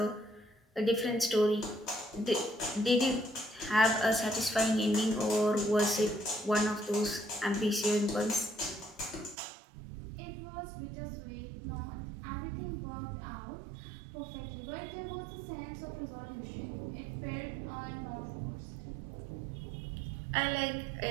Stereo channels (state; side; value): drops out; left; at 9.3 s